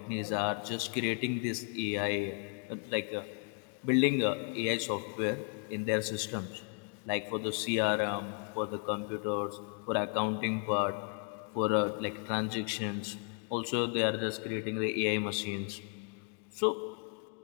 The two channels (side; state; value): right; quieter; 39.8 dB